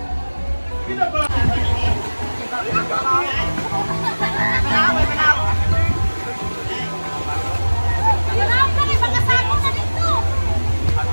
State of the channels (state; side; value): inverted; both; correlation -1.00